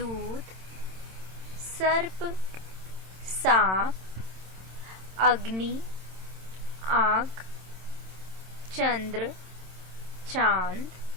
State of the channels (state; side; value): late; left; 27 ms